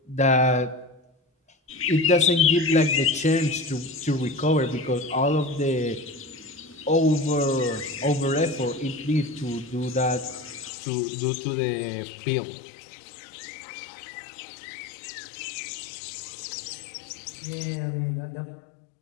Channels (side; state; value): right; drops out; at 10.7 s